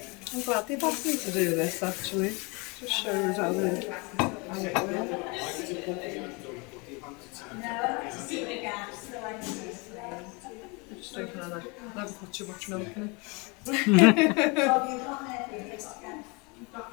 I'm glad they've asked me to do this actually. Just shows how it works. No, to see the gaps, so I can see the flame. Just taking on that. Never put too much milk in it. Oh, you've got it, you've got gas. You've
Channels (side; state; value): right; quieter; 29.2 dB